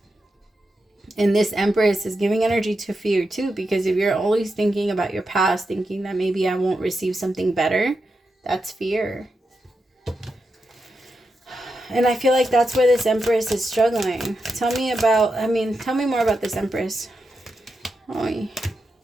And this Empress is giving energy to fear too. Because if you're always thinking about your past, thinking that maybe I won't receive something better, that's fear. And I feel like that's where this Empress is struggling. Tell me more about this Empress. Oy.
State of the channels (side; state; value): both; normal; correlation 0.87